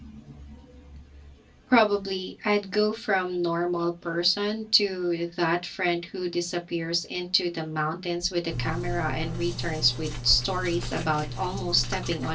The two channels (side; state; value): both; identical; correlation 1.00